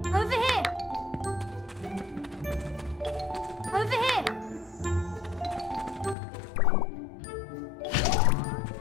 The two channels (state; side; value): drops out; right; at 6.2 s